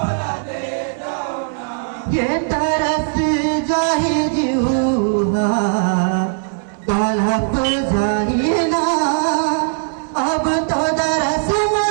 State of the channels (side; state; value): left; silent; 67 dB below the other